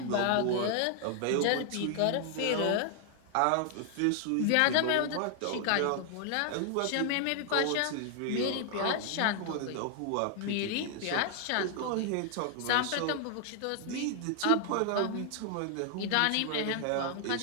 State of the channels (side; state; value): both; different; correlation 0.00